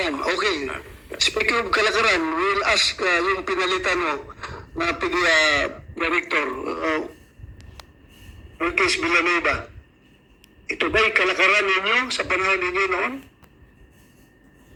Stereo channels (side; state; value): both; identical; correlation 1.00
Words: okay. Speaking of kalakaran, we'll ask yung pinalitan mo na PDEA Director, Ortiz Villanueva. Ito ba'y kalakaran ninyo sa panahon ninyo noon?